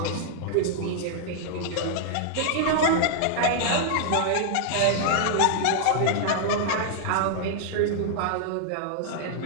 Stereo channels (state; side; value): different; both; correlation -0.01